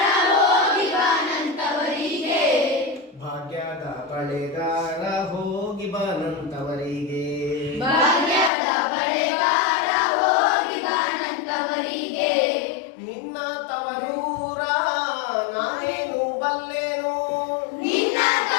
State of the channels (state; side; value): drops out; right; at 8.5 s